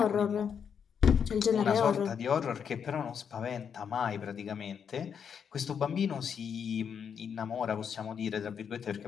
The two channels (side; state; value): right; quieter; 7.3 dB